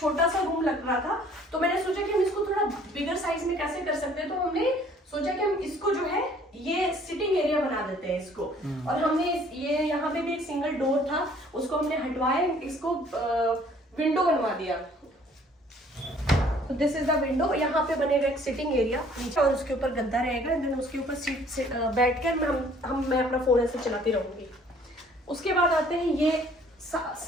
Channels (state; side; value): normal; both; correlation 0.57